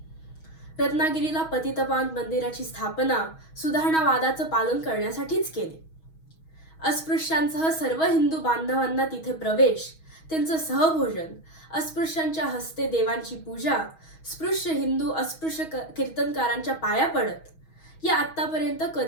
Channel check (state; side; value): late; right; 6.3 ms